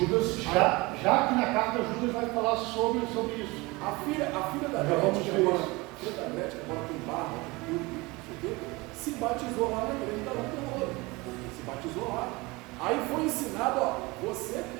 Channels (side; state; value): left; quieter; 23.7 dB